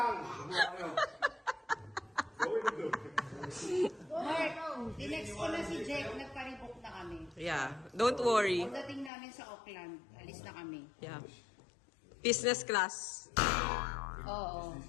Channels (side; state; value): right; drops out; at 9.1 s